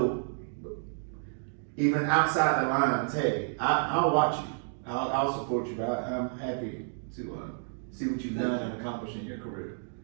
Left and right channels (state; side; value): silent; left; digital silence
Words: even outside the lines, hey, I'll watch you. I'll support you. But I'm happy to see what you've done and accomplished in your career.